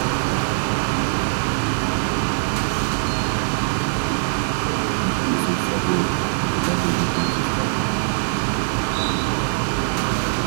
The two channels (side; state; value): left; silent; digital silence